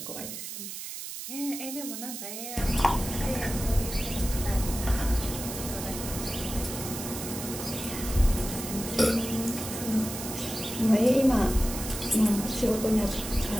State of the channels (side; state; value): right; noise; hiss, 8 dB below the sound